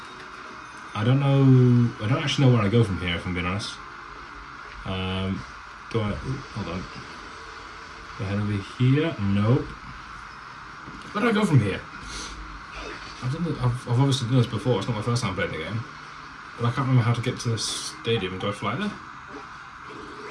don't know. I don't actually know where I go from here, if I'm being honest. Do I? Hold on. Do I head over here? Nope. Where do I go from here? I've obviously done this before. It's not my first time playing the game, but I can't remember how to get to the stadium. Do I fly there?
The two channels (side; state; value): both; identical; correlation 1.00